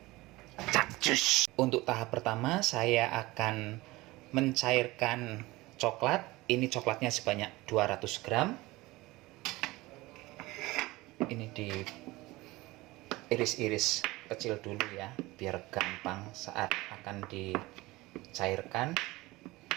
Cacus. Untuk tahap pertama saya akan mencairkan coklat. Ini coklatnya sebanyak 200 gram. Ini diiris-iris kecil dulu ya, biar gampang saat akan dicairkan.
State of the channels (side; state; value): left; quieter; 20.4 dB